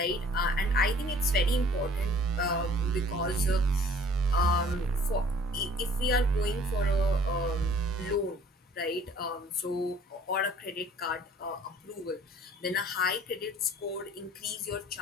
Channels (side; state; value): both; normal; correlation 0.54